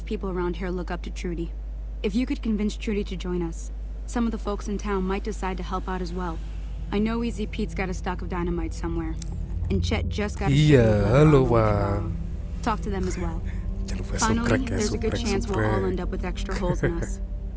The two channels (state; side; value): identical; both; correlation 1.00